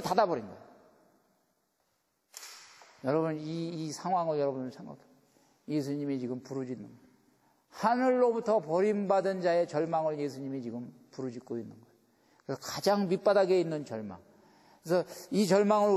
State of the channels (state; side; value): identical; both; correlation 1.00